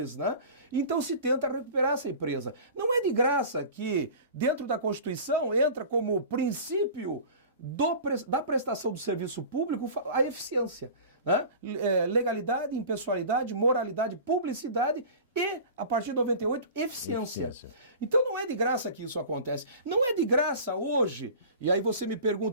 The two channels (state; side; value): inverted; both; correlation -0.38